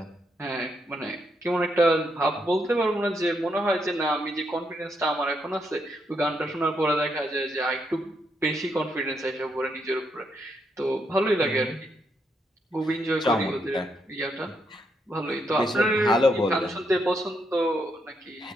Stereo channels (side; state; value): both; normal; correlation 0.78